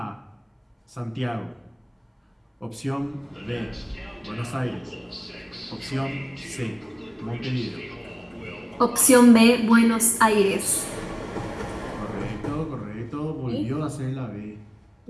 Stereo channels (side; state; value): both; identical; correlation 1.00